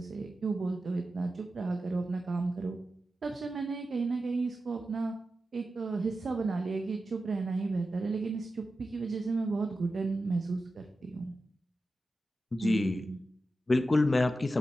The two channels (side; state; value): both; normal; correlation 0.92